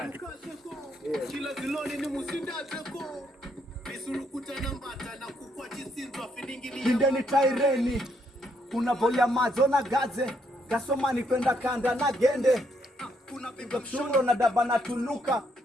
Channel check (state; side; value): normal; both; correlation 0.73